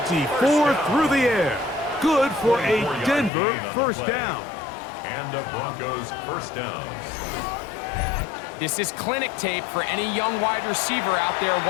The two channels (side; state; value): right; drops out; at 3.3 s